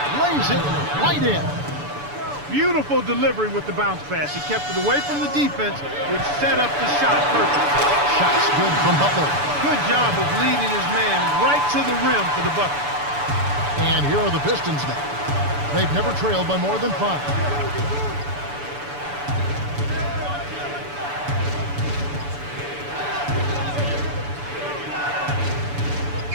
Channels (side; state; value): left; late; 6.9 ms